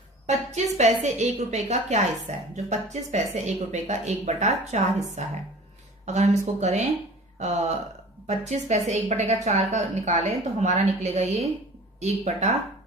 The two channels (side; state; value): both; normal; correlation 0.43